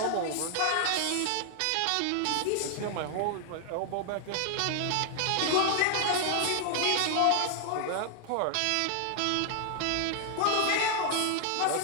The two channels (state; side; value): different; both; correlation 0.00